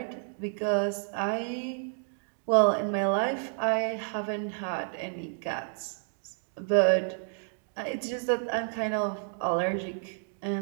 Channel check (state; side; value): silent; left; 58 dB below the other